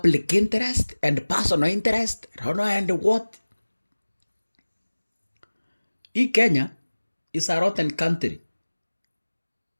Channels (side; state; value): both; inverted; correlation -1.00